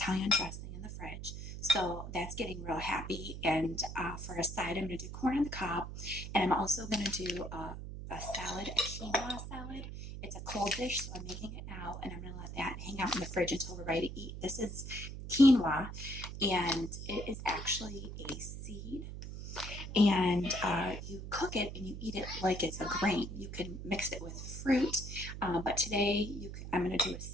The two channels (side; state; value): right; noise; hum, 8 dB below the sound